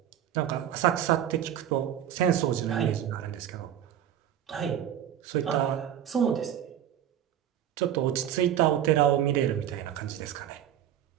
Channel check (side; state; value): left; quieter; 10.5 dB